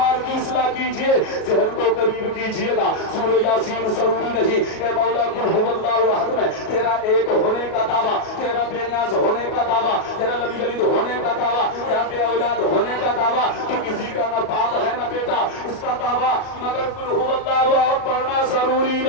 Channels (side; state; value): right; late; 37 ms